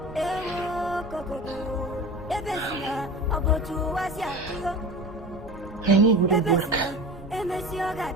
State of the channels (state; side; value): normal; both; correlation 0.33